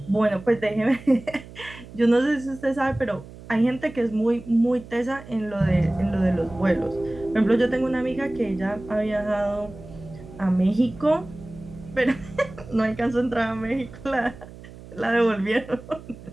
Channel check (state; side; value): noise; right; hum, 17 dB below the sound